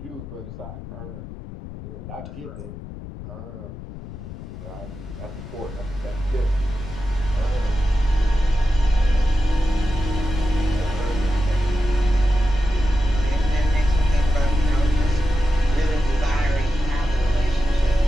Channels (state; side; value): noise; left; rumble, 12 dB below the sound